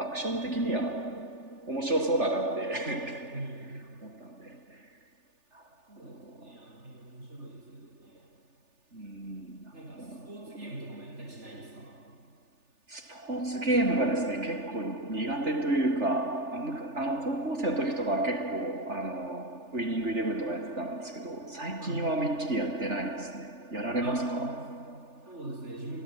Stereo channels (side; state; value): left; late; 3.4 ms